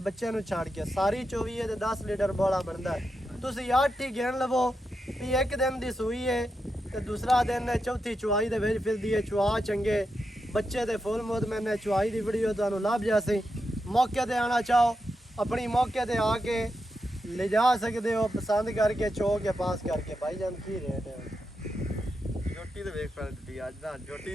ਬੱਚਿਆਂ ਨੂੰ ਛੱਡ ਕੇ। ਸਾਰੀ 24 ਹੈ ਤੇ 10 ਲੀਟਰ ਬੋਲਾ ਬਣਦਾ ਹੈ। ਤੁਸੀਂ 8 ਹੀ ਗਿਣ ਲਵੋ ਵੀ ਇੱਕ ਦਿਨ ਦੀ ਸੂਈ ਹੈ ਤੇ ਦੂਸਰਾ ਦਿਨ ਹੈ ਚੌਥੀ ਚੁਆਈ ਦੇ ਵਿੱਚ ਫਿਰਦੀ ਹੈ। ਚੁਆ ਚੰਗੇ ਬੱਚੇ ਦੇ ਫੁੱਲ ਮੁਤਮਿਨ ਹੈ। ਚੁਆਈ ਦੀ ਵੀਡੀਓ ਤੁਹਾਨੂੰ ਲੱਭ ਜਾਸੀ। ਮੌਕੇ ਤੇ ਆਣਾ ਚਾਹੋ ਆਪਣੀ ਮੌਕੇ ਤੇ ਆ ਕੇ ਲੈ ਜਾ ਸਕਦੇ ਹੋ, ਪਸੰਦ ਕਰਕੇ ਚੋ ਕੇ ਪਾਸ ਕਰਕੇ। ਭਾਈਜਾਨ ਕੀ ਰੇਟ ਹੈ? ਝੋਟੀ ਤੇ ਵੇਖ ਪੈ ਦਿੱਤੀ ਅੱਜ ਦਾ। ਝੋਟੀ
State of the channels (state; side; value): normal; both; correlation 0.86